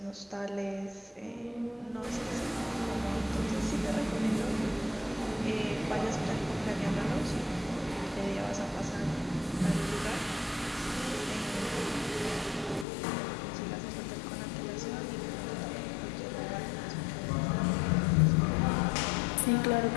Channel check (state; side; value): drops out; right; at 12.9 s